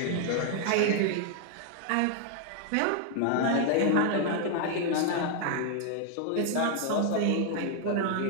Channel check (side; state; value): both; different; correlation 0.00